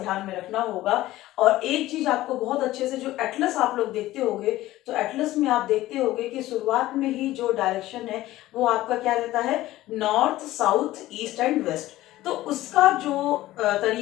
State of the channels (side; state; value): right; quieter; 16.1 dB